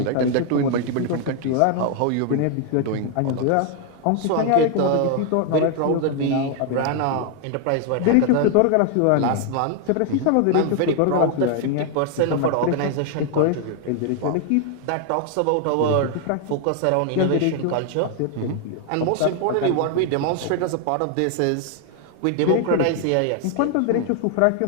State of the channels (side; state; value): both; different; correlation 0.00